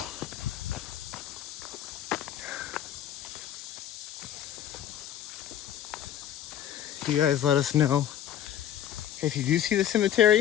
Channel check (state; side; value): quieter; right; 10.8 dB